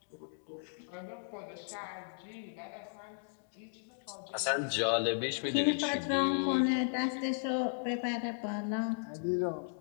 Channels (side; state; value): right; silent; digital silence